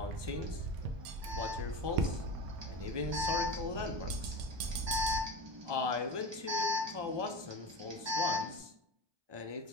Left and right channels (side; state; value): left; late; 1.2 ms